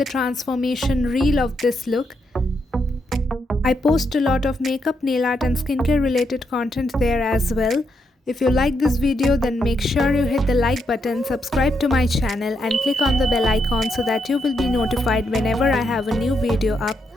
transformation reel of this look. I post a lot of makeup, nail art and skincare related content there as well. If you like this video, then make sure you hit the like button, subscribe to my channel and click on the bell icon so that you will be notified whenever I have a new video up.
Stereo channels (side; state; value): both; normal; correlation 0.80